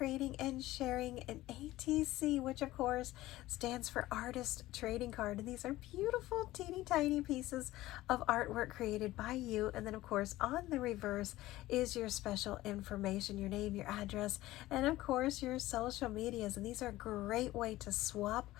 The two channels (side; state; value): right; quieter; 16.7 dB